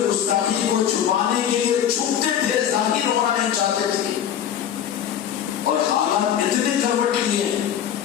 گستاخی کو چھپانے کے لیے چھپتے تھے، ظاہر ہونا نہیں چاہتے تھے۔ اور حالات اتنے کروٹ لیے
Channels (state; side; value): quieter; right; 9.6 dB